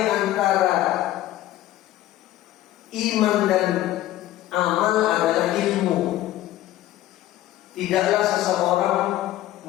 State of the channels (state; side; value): quieter; right; 14.2 dB